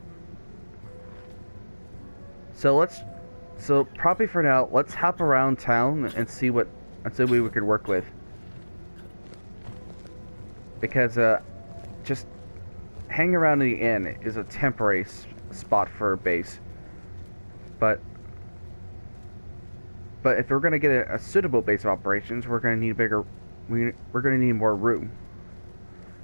So probably for now, let's hop around town and see what we could work with. Because just hanging around in the inn is a temporary spot for a base. But if we're gonna get a suitable base of operations, we're gonna need we're gonna need more room.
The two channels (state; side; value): inverted; both; correlation -1.00